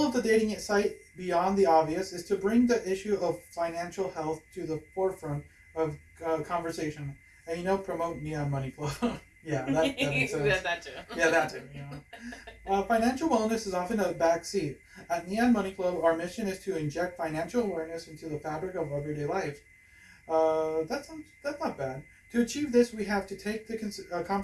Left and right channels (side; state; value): both; identical; correlation 1.00